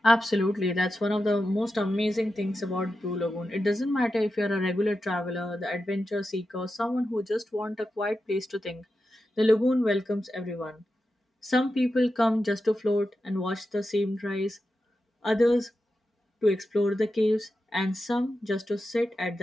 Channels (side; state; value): both; normal; correlation 0.90